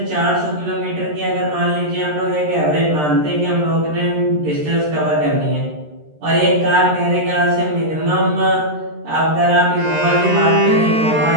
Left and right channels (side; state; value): left; late; 13 ms